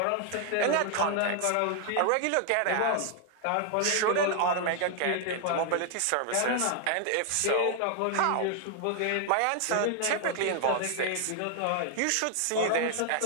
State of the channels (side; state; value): both; different; correlation 0.00